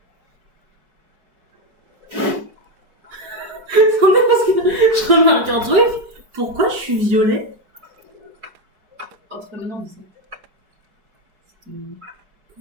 Attendez, parce que je remarque un truc. Pourquoi je suis violée? Oh, c'est pas maintenant, mais ça.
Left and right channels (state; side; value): late; left; 4.9 ms